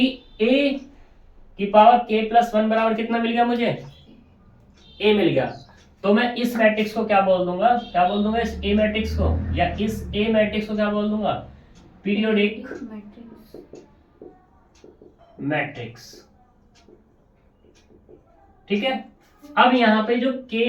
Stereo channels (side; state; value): both; identical; correlation 1.00